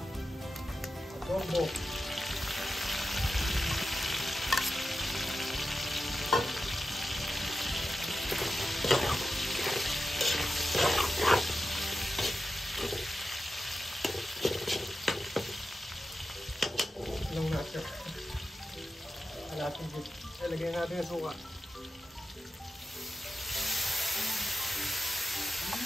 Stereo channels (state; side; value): normal; both; correlation 0.91